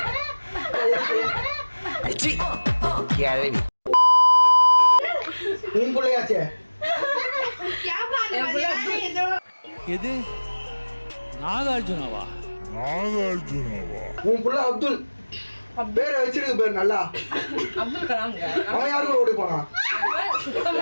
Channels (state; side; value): inverted; both; correlation -1.00